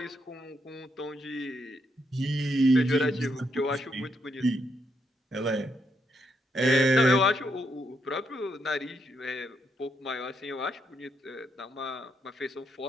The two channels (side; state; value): both; normal; correlation 0.78